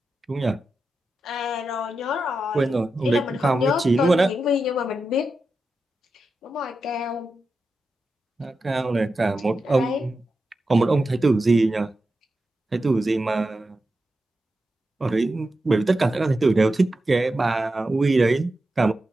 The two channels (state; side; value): normal; both; correlation 0.90